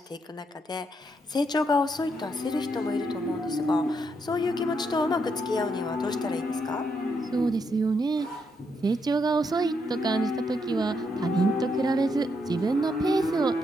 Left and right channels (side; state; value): both; normal; correlation 0.78